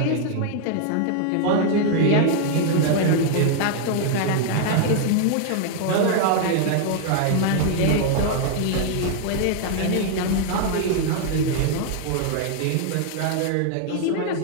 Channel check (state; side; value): different; both; correlation 0.00